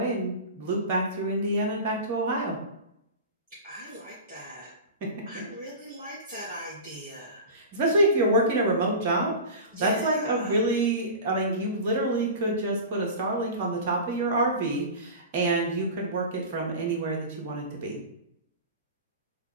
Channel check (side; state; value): both; inverted; correlation -0.31